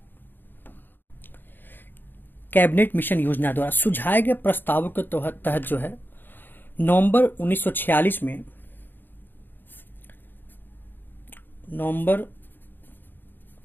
कैबिनेट मिशन योजना द्वारा सुझाए गए प्रस्तावों के तहत जो है नवंबर 1946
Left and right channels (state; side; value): late; right; 0.094 ms